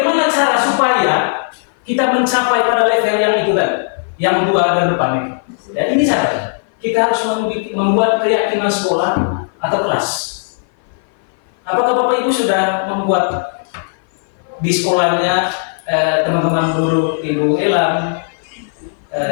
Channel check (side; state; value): right; silent; 58 dB below the other